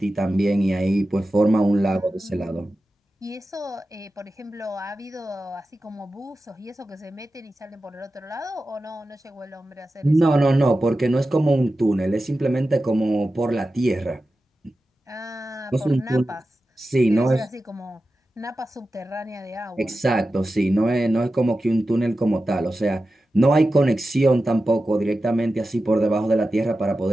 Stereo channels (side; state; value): both; normal; correlation 0.93